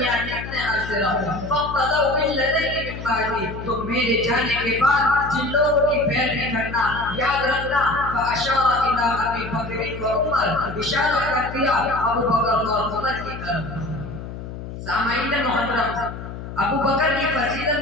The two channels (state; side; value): noise; left; hum, 10 dB below the sound